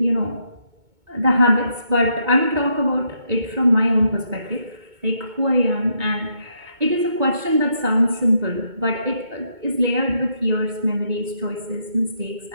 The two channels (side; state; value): left; late; 2.2 ms